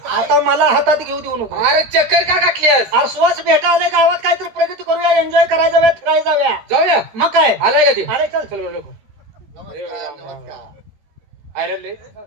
आता मला हातात घेऊ देऊ नको. अरे चक्कर का गाठलीस? अरे स्वच्छ भेटायला गावात काहीतरी प्रगती करूया, एन्जॉय करायला जाऊया, फिरायला जाऊया. जाऊया. मग काय? आलाय का ते? अरे चल. चल बरं लोक. नमस्कार.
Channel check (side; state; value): left; late; 14 ms